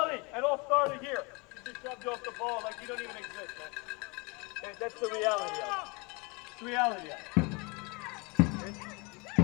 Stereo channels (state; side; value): quieter; right; 29.2 dB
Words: it all started here. You just shoved off the ball like you don't even exist, man. Okay, that's the reality of it. It's the reality of